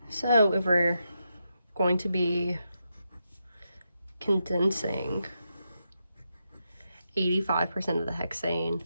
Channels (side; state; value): both; inverted; correlation -0.85